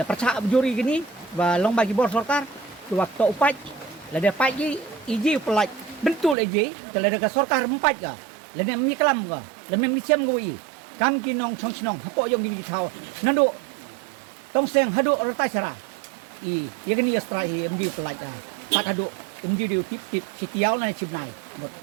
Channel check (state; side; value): drops out; left; at 6.4 s